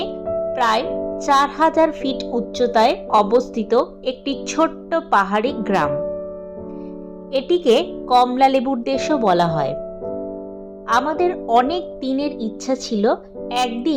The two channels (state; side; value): identical; both; correlation 1.00